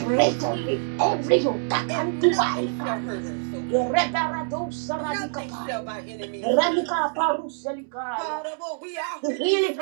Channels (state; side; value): silent; left; digital silence